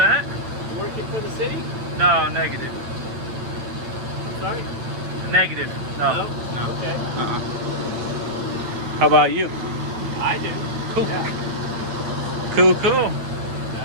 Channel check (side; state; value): left; late; 8.9 ms